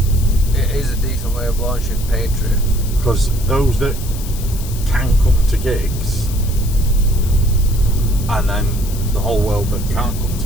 It is a decent way of launching Patreon. Because those that can come to gigs, and then the whole world that can't come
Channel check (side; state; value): left; noise; hiss, 14 dB below the sound